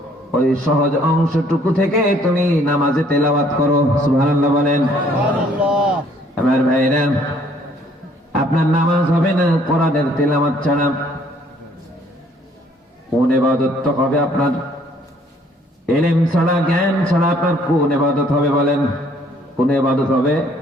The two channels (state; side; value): normal; both; correlation 0.62